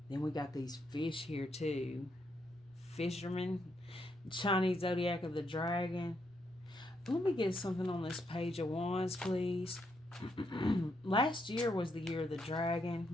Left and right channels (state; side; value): normal; both; correlation 0.78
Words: Then we got these fish here too. Fisherman. Chinese zodiac of the dragon. Let me get something on this page of wands, please. Last year was the year of the dragon,